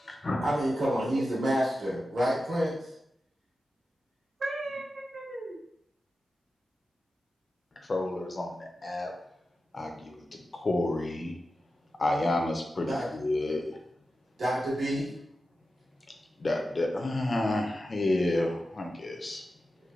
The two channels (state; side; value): normal; both; correlation 0.92